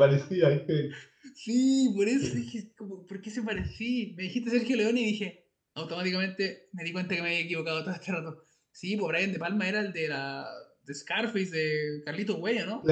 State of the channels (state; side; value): identical; both; correlation 1.00